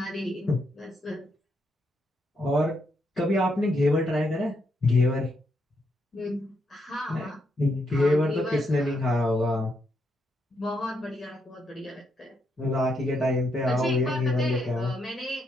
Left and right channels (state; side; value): normal; both; correlation 0.79